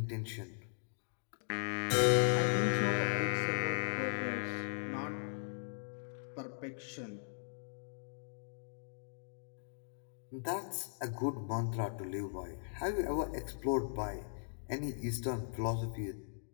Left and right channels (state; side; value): silent; right; digital silence